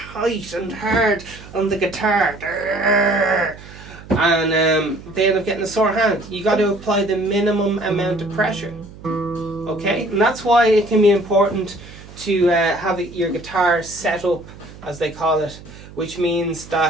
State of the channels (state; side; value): noise; right; hum, 18 dB below the sound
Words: and hard on the guitar. And they end up getting a sore hand. You got to apply the minimum amount of pressure. Okay? And that's why it can be important to have your guitar set up, as they call it, which means